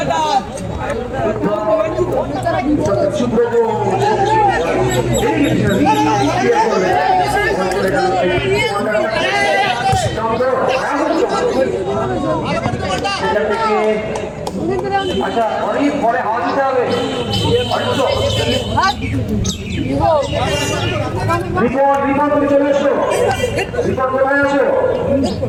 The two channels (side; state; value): both; identical; correlation 1.00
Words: সুব্রত আচ্ছা অনেক পরে হাওয়া দিতে হবে রিপোর্ট তুমি চলে এসো রিপোর্ট কোথায় আছো